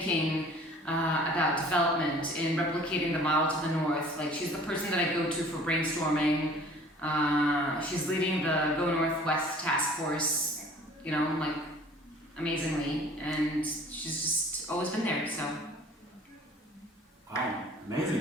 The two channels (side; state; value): both; normal; correlation 0.50